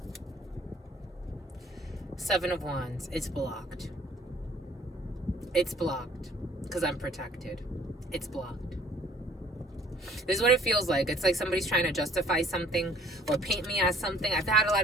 Seven of Wands, it's blocked. It's blocked because I'm protected. It's blocked. This is what it feels like. It's like somebody's trying to justify something or paint me as something. I've had a lot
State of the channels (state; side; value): normal; both; correlation 0.56